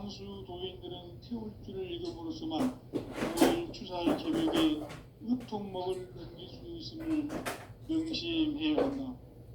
도인들은 태울주를 읽음으로써만 가을 추살 개벽의 으통목을 넘길 수 있음을 명심해야 한다.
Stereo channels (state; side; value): identical; both; correlation 1.00